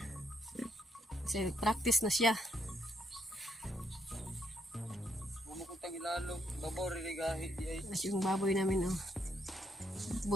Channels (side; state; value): both; normal; correlation 0.76